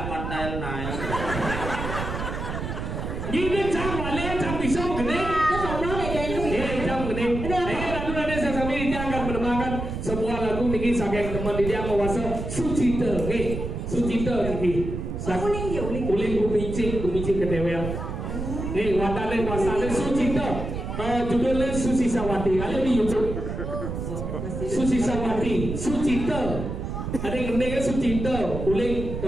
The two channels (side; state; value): right; noise; rumble, 5 dB below the sound